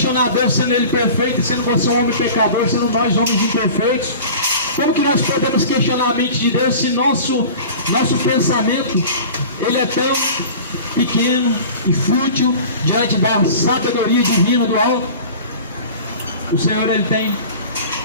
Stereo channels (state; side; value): inverted; both; correlation -0.39